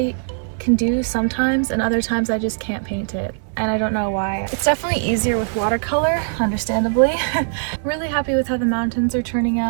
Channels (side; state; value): left; silent; 65 dB below the other